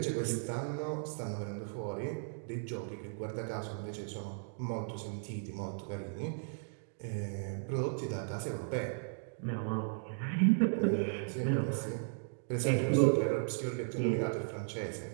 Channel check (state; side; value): silent; left; digital silence